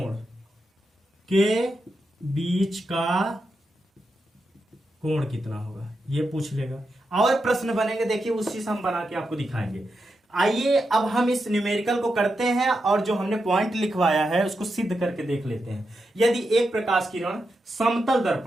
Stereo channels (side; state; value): both; normal; correlation 0.86